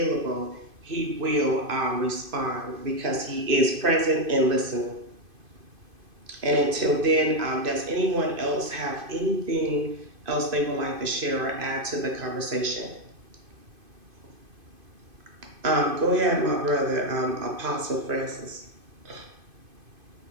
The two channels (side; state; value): left; late; 2.5 ms